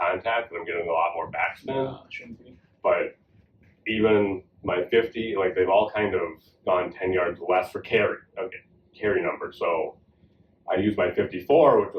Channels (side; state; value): both; identical; correlation 1.00